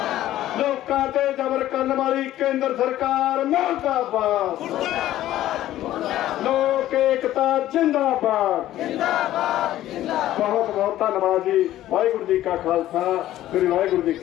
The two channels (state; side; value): quieter; right; 13.7 dB